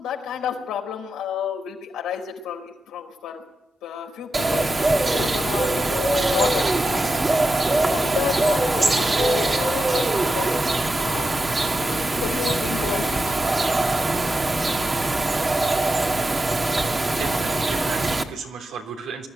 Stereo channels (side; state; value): both; normal; correlation 0.90